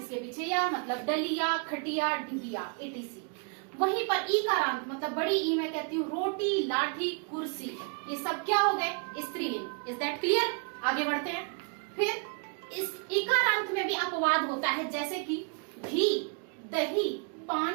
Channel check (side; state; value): left; quieter; 37.3 dB